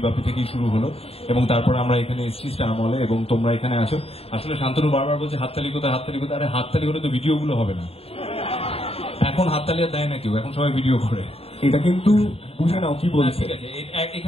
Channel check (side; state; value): right; late; 0.28 ms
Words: বাপি থেকেই শুরু হলো, এবং তারপর আমরা এখানে এসেছি স্টার মলে এবং তোমরা এখানে আছো। আসলে শান্তনু বারবার বলছে হাততালি কোথায়, হাততালি কোথায়। আরে হাততালি হলে তো ভিডিওগুলো হবে না। এখন হাততালি আর দেয় না কেউ, এখন সবাই ভিডিও করে। এটা কিন্তু বুঝে নাও কি বলছে। ঠিক আছে,